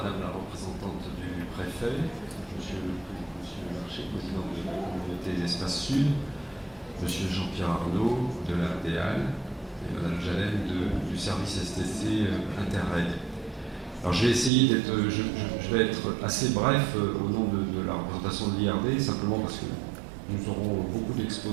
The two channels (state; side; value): drops out; left; at 14.5 s